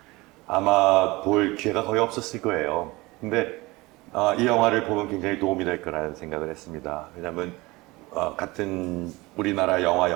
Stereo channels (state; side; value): quieter; left; 22.0 dB